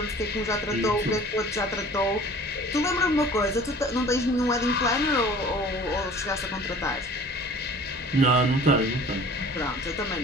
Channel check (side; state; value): both; normal; correlation 0.46